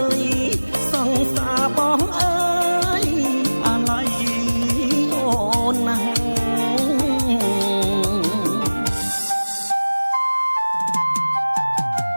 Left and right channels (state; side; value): inverted; both; correlation -1.00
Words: យសង្សារបងអើយអាឡ័យអូនណាស់